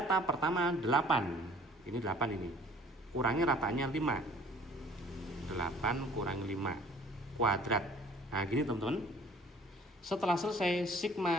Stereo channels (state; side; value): normal; both; correlation 0.53